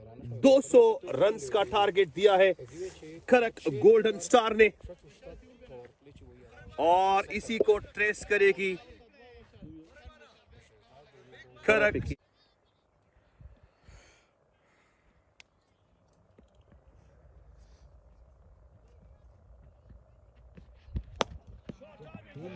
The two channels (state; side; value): identical; both; correlation 1.00